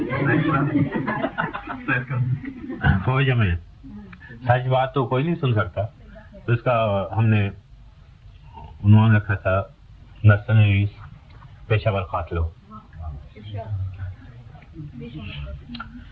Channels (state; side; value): identical; both; correlation 1.00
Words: فوج میں سچ بات تو کوئی نہیں سن سکتا، تو اس کا ہم نے عنوان رکھا تھا مرسنریز، پیشہ ور قاتلوں.